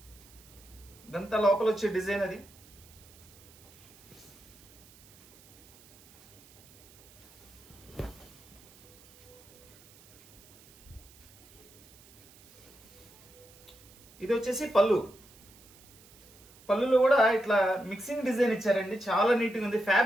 ఇదంతా లోపల వచ్చే డిజైన్ అది. ఇది వచ్చేసి పళ్ళు. పళ్ళులో కూడా ఇట్లా మిక్సింగ్ డిజైన్ ఇచ్చారండి, చాలా నీట్గా ఉంది.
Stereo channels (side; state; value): right; noise; hiss, 24 dB below the sound